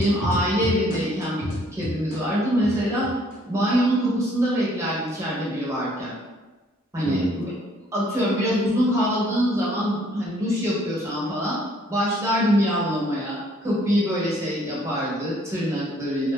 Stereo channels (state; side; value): normal; both; correlation 0.62